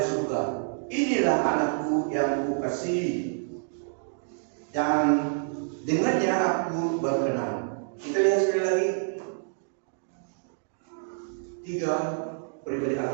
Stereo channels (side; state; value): left; silent; digital silence